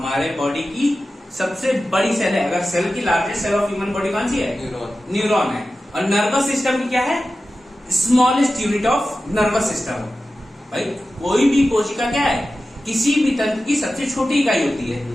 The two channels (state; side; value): normal; both; correlation 0.94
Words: बॉडी की सबसे बड़ी सेल है। अगर सेल की largest cell of human body कौन सी है? न्यूरॉन है। और नर्वस सिस्टम की क्या है? Smallest unit of nervous system. भाई कोई भी कोशिका क्या है? किसी भी तंत्र की सबसे छोटी इकाई होती है।